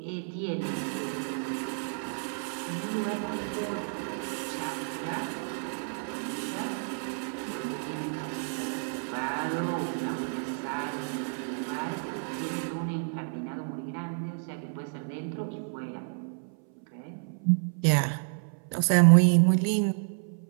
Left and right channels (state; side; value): silent; left; 58 dB below the other